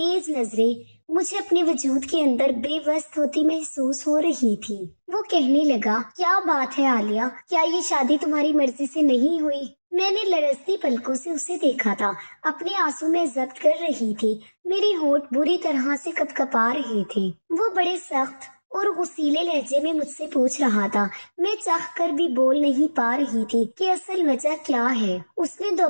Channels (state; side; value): inverted; both; correlation -1.00